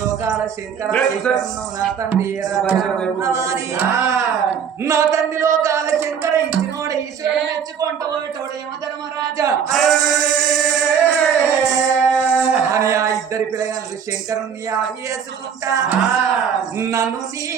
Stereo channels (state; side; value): quieter; left; 7.5 dB